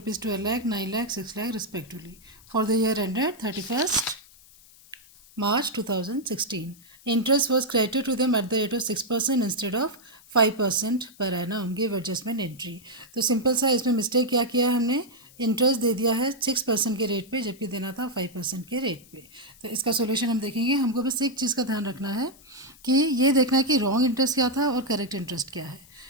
12 lakh, 9 lakh, 6 lakh respectively for the year ended 31st March 2016. Interest was credited to them at the rate of 6% instead of 5% per annum. Give adjustment entry. तो सिंपल सा इसमें मिस्टेक क्या किया है हमने, इंटरेस्ट दे दिया है 6% के रेट पे जबकि देना था 5% के रेट पे। तो इसका सोल्यूशन हम देखेंगे। हमको बस एक चीज़ का ध्यान रखना है कि ये देखना है कि रॉन्ग इंटरेस्ट क्या था और करेक्ट इंटरेस्ट क्या है।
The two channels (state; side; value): noise; left; hiss, 25 dB below the sound